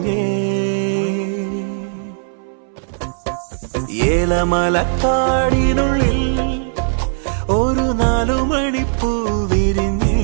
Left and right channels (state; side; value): silent; left; 66 dB below the other